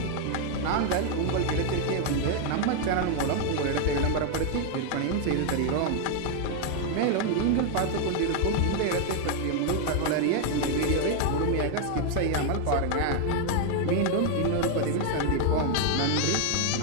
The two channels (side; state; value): both; different; correlation 0.00